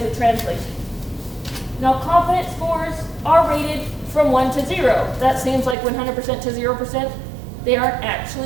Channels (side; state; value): left; drops out; at 5.8 s